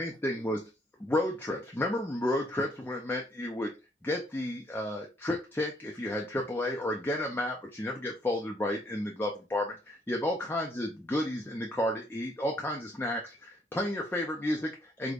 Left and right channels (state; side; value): normal; both; correlation 0.68